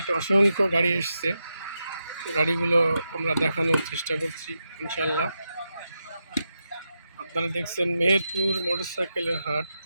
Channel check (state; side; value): inverted; both; correlation -0.87